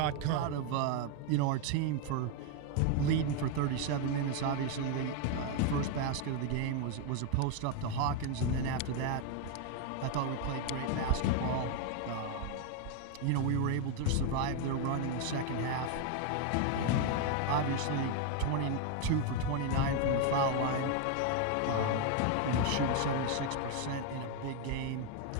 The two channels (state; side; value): different; both; correlation 0.01